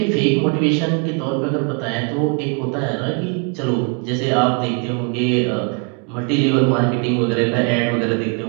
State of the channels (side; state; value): left; quieter; 36.8 dB